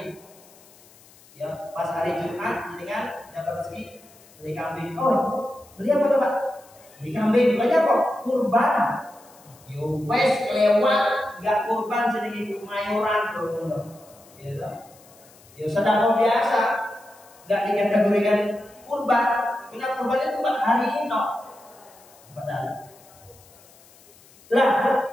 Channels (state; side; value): noise; left; hiss, 26 dB below the sound